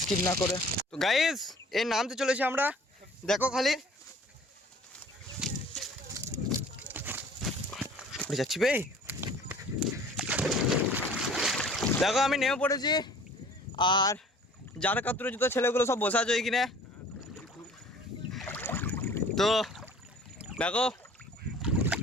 স্কিপ না করে। তো গাইস এর নামতে চলেছি আমরা, দেখো খালি উড়ে যাচ্ছি বে। দেখো আমি নেমে পড়েছি, আর যার কাতরে জুতো ছেলেগুলো সব বসে আছে ওইখানে। তো দেখো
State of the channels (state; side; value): normal; both; correlation 0.49